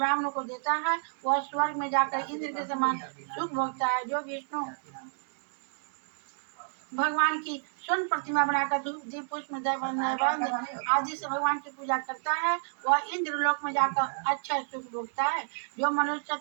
को देता है वह स्वर्ग में जाकर इंद्र के समान सुख भोगता है। जो विष्णु भगवान की स्वर्ण प्रतिमा बनाकर धूप दीप पुष्प नैवेद्य आदि से भगवान की पूजा करता है वह इंद्र लोक में जाकर अच्छा सुख भोगता है। जो मनुष्य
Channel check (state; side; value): silent; left; digital silence